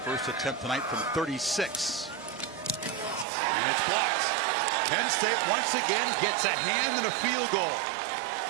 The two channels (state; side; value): drops out; left; at 3.2 s